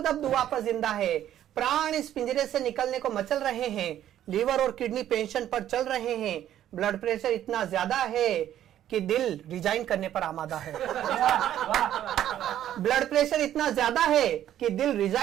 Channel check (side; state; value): left; quieter; 11.5 dB